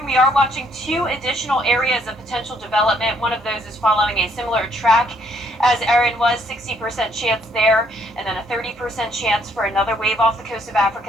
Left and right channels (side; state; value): both; normal; correlation 0.68